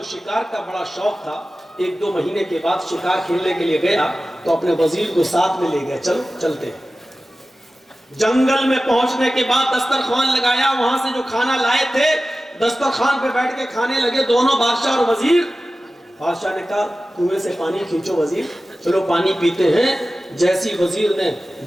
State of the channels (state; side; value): normal; both; correlation 0.95